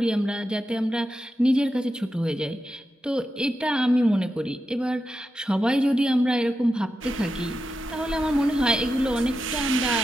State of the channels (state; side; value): normal; both; correlation 0.89